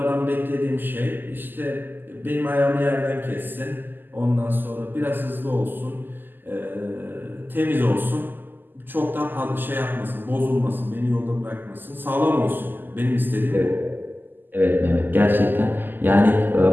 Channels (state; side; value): late; left; 0.091 ms